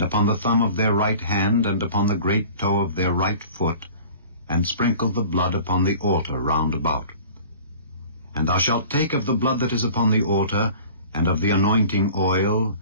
upon the thumb of their right hand, and upon the great toe of their right foot, and sprinkle the blood upon the altar round about. And thou shalt take of the blood that is upon the altar, and of the anointing oil,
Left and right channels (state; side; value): inverted; both; correlation -0.44